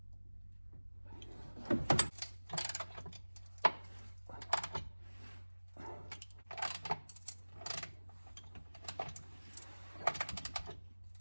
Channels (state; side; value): inverted; both; correlation -1.00